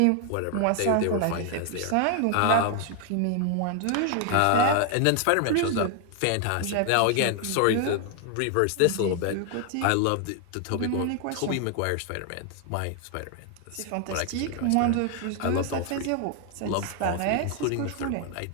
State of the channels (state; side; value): different; both; correlation 0.00